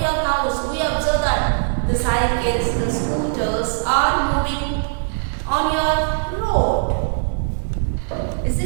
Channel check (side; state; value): left; silent; digital silence